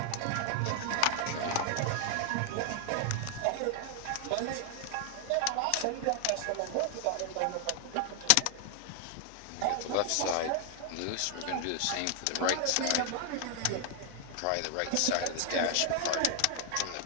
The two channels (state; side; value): different; both; correlation 0.00